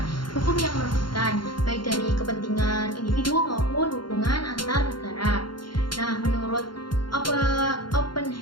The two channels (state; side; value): late; right; 0.72 ms